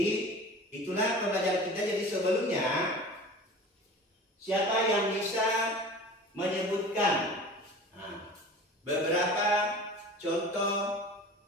itulah pembelajaran kita. Jadi sebelumnya, siapa yang bisa menyebutkan beberapa contoh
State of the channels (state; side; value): normal; both; correlation 0.38